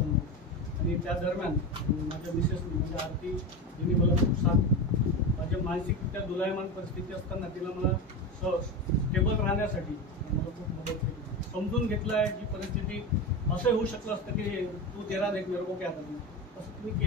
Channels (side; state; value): both; normal; correlation 0.21